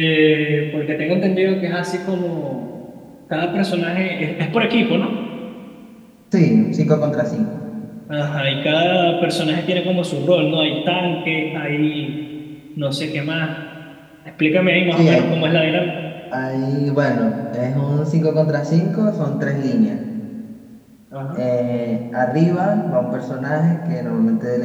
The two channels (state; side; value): identical; both; correlation 1.00